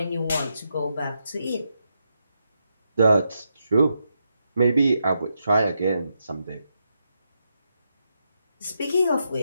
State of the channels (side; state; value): both; inverted; correlation -0.83